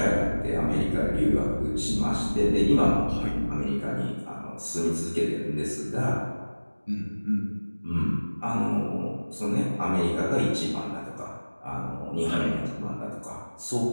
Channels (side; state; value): both; inverted; correlation -1.00